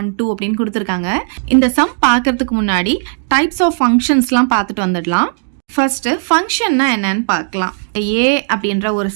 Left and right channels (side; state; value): left; silent; 61 dB below the other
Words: 2 அப்படின்னு கொடுத்துருக்காங்க. இந்த சம் பார்க்கறதுக்கு முன்னாடி டைப்ஸ் ஆஃப் ஃபங்க்ஷன்ஸ்லாம் பார்த்துட்டு வந்துடலாம். ஃபர்ஸ்ட் ஃபங்க்ஷன்னா என்னன்னு பார்க்கலாம். A அப்படின்ற ஒரு